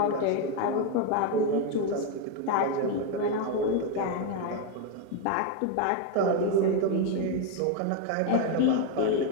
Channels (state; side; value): different; both; correlation 0.02